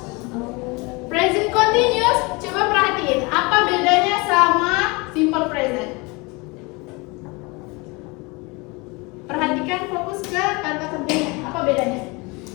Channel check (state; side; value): quieter; right; 26.9 dB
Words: Present continuous, coba perhatiin apa bedanya sama simple present. Perhatikan, fokus ke kata kerjanya. Apa bedanya?